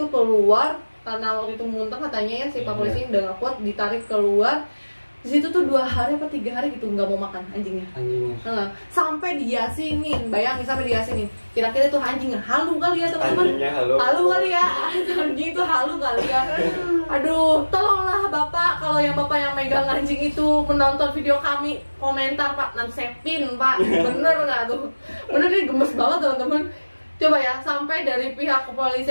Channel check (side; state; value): both; inverted; correlation -1.00